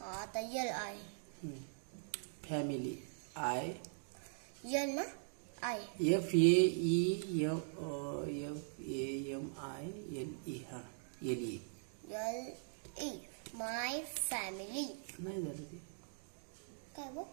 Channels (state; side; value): silent; left; digital silence